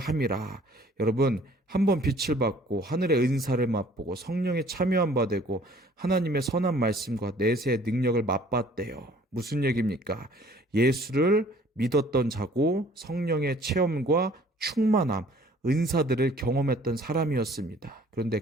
여러분, 한번 빛을 받고 하늘의 은사를 맛보고 성령에 참여한 바 되고 하나님의 선한 말씀과 내세의 능력을 맛봤대요. 무슨 얘기입니까? 예수를 믿었던 자고 성령의 체험과 충만함, 은사들을 경험했던 사람이었습니다. 그런데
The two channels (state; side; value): normal; both; correlation 0.55